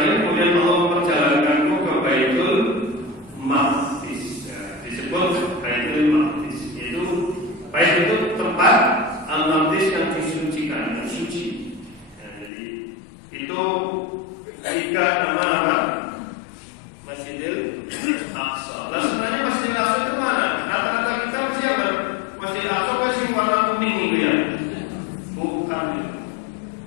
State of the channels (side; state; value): right; drops out; at 12.5 s